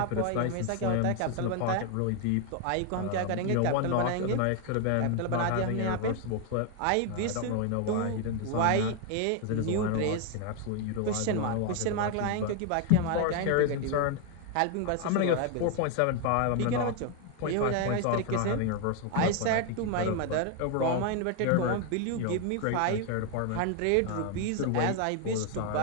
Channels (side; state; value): both; different; correlation 0.01